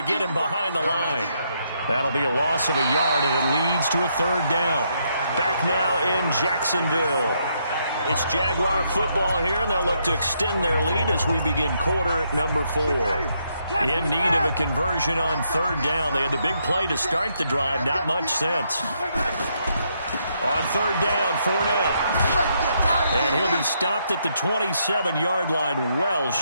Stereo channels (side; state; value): both; inverted; correlation -0.76